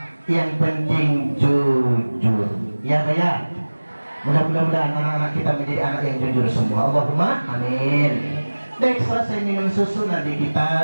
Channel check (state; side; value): inverted; both; correlation -1.00